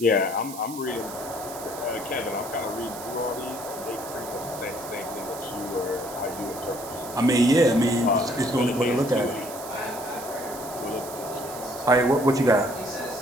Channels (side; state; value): right; noise; hiss, 13 dB below the sound